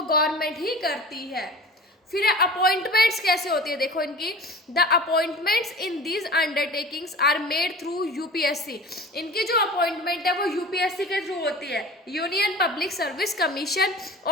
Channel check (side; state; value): both; normal; correlation 0.38